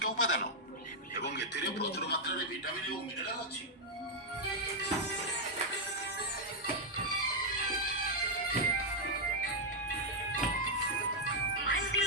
ଉପାଦାନ ଏବଂ ଏଥିରେ ପ୍ରଚୁର ମାତ୍ରାରେ ଭିଟାମିନ୍ ଓ ମିନେରାଲ ଅଛି।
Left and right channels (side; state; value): both; normal; correlation -0.02